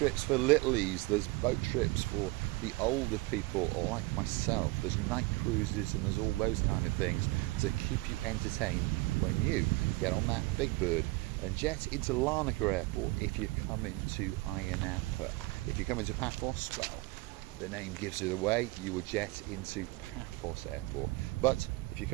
for littlies, there's boat trips for the older people like myself, there's night cruises, and there's all those kind of things to keep you entertained when you get on that big bird and jet into Larnaca Airport if you come into Ayia Napa. If you come into Paphos, well, the name gives it away, you would jet into Paphos Airport. But if you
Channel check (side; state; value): left; quieter; 22.4 dB